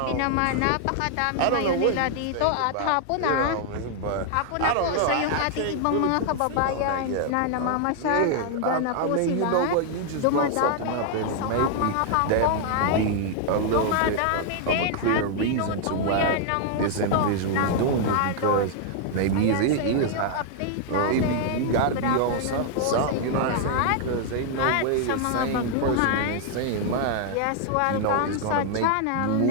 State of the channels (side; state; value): both; different; correlation 0.00